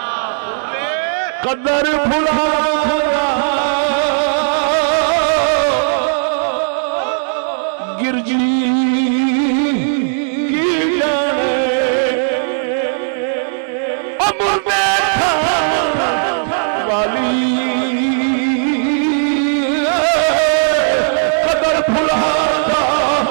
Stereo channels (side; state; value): left; silent; digital silence